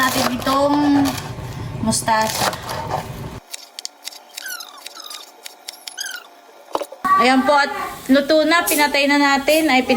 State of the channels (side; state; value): both; identical; correlation 1.00